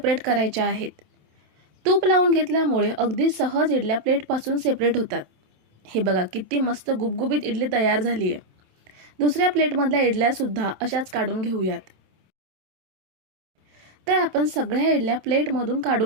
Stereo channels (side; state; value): left; late; 27 ms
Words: करायच्या आहेत. तूप लावून घेतल्यामुळे अगदी सहज इडल्या प्लेटपासून सेपरेट होतात. हे बघा किती मस्त गुबगुबीत इडली तयार झाली आहे. दुसऱ्या प्लेटमधल्या इडल्या सुद्धा अशाच काढून घेऊयात. तर आपण सगळ्या इडल्या प्लेटमधून